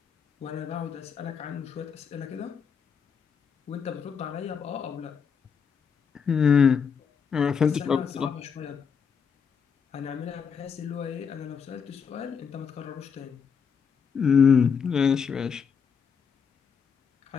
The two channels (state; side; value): quieter; right; 6.5 dB